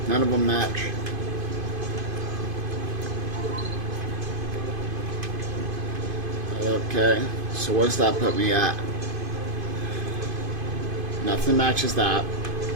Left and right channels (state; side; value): late; left; 2.5 ms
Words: none of them match. Okay, so what's that put me at? Nothing matches that.